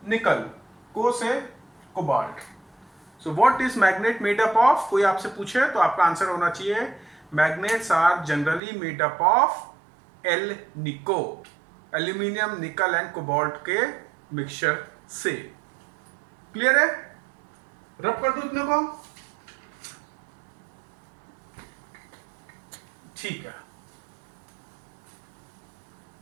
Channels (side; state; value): left; drops out; at 8.6 s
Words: निकल, को से cobalt. So what is magnet made up of? कोई आपसे पूछे तो आपका आंसर होना चाहिए magnets are generally made up of alnico, aluminium, nickel and cobalt के मिक्सचर से। क्लियर है? रब कर दो इतने को। ठीक है।